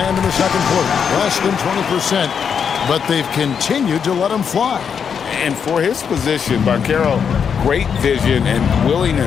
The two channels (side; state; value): right; quieter; 7.0 dB